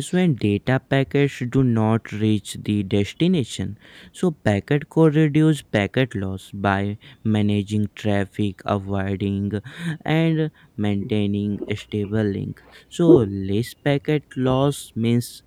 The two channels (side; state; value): both; identical; correlation 1.00